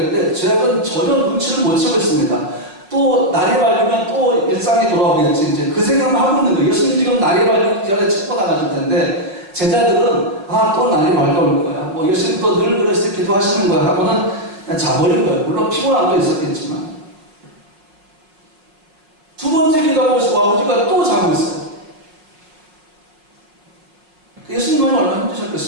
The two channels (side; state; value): left; late; 5.4 ms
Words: 제가 전혀 눈치를 못 채고 있습니다. 또 날이 밝으면 또 일상이 돌아오겠지, 이제 그 생각만 하고 있는 거예요. 예수님 지금 날이 밝기 전에 책고 나가실 텐데, 제자들은 또 날이 밝아올 거야, 뭐 예수님 또 늘 그랬을 때 기도하시는 거야 하고는 그냥 자버린 거예요. 물론 피곤함도 있었겠지만. 두 번째 기도하고 아버지가 또 자고 있어요. 예수님은 얼마나